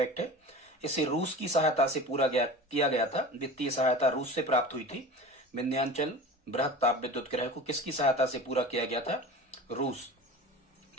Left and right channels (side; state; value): both; normal; correlation 0.35